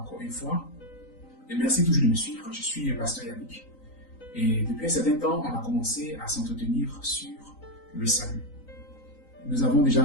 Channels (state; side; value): late; right; 3.9 ms